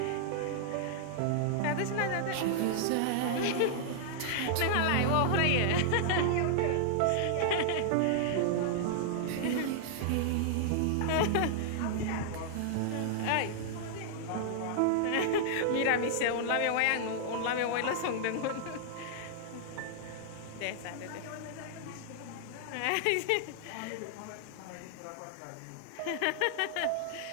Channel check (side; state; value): both; different; correlation -0.01